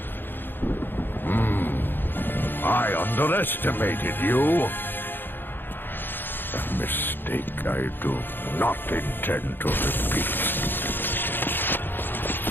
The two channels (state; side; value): late; right; 0.097 ms